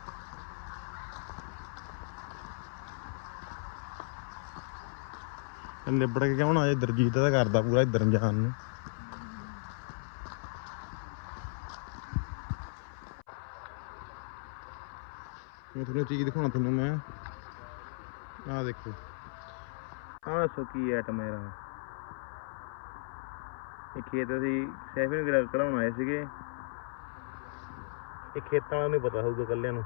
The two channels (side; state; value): right; silent; 54 dB below the other